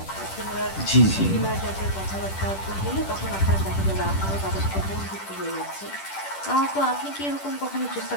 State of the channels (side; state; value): right; late; 10 ms